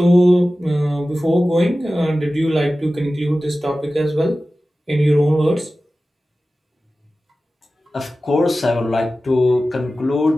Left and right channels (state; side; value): normal; both; correlation 0.95